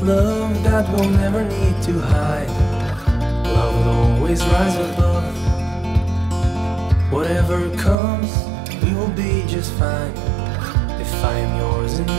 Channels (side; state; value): left; drops out; at 8.0 s